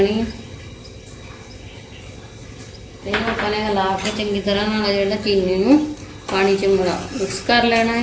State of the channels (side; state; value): both; identical; correlation 1.00